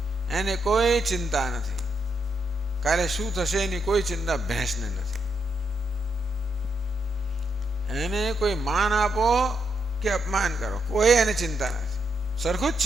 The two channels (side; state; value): both; normal; correlation 0.80